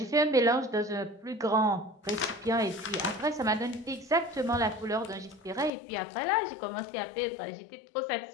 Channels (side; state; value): right; drops out; at 5.7 s